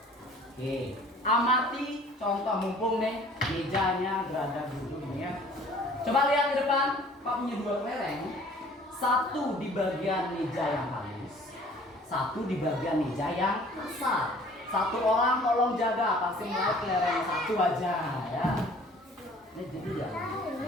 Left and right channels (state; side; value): normal; both; correlation 0.52